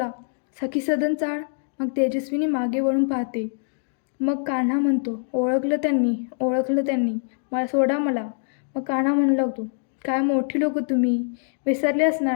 सखी सदन चाळ. मग तेजस्विनी मागे वळून पाहते. मग कान्हा म्हणतो, ओळखलं त्यांनी, मला सोडा मला. मग कान्हा म्हणू लागतो, काय मोठी लोक तुम्ही, विसरले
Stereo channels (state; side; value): silent; right; digital silence